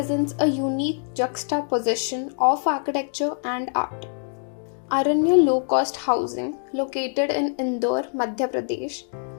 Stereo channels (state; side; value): silent; right; digital silence